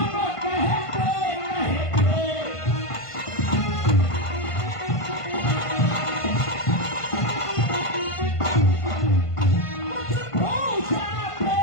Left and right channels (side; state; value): right; late; 1.5 ms